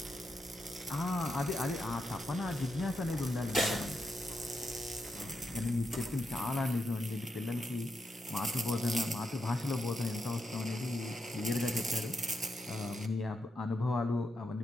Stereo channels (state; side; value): normal; both; correlation 0.84